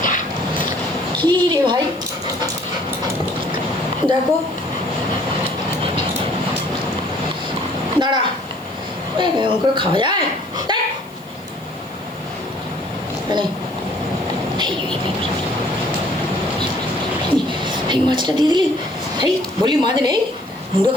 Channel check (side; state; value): left; noise; hiss, 26 dB below the sound